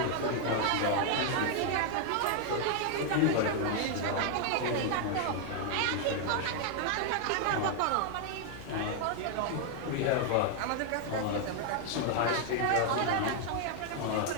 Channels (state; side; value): different; both; correlation 0.00